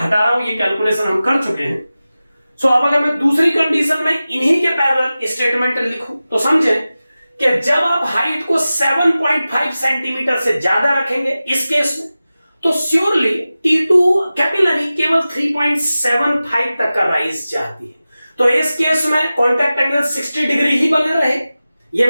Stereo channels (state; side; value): inverted; both; correlation -0.95